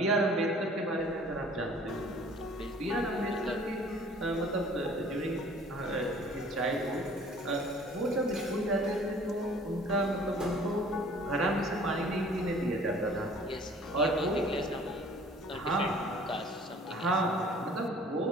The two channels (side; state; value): both; normal; correlation 0.51